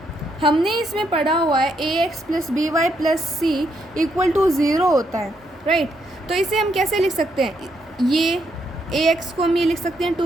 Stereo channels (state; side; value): normal; both; correlation 0.76